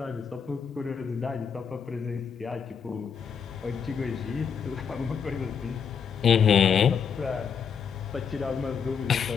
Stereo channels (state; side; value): quieter; right; 6.8 dB